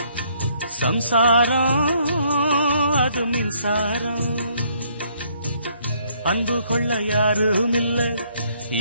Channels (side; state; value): both; inverted; correlation -0.67